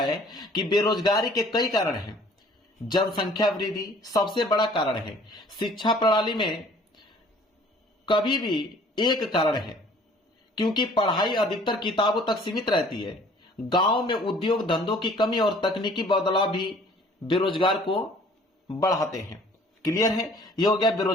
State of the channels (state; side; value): normal; both; correlation 0.54